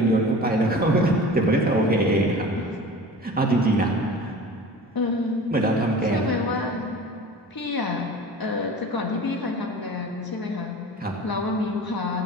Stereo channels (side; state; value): both; normal; correlation 0.39